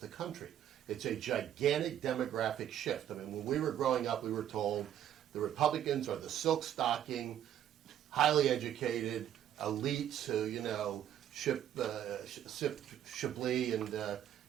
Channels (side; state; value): left; quieter; 10.7 dB